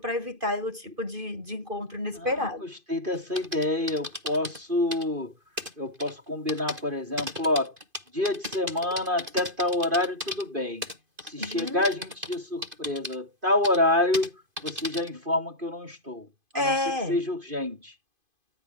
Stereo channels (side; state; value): left; late; 2.5 ms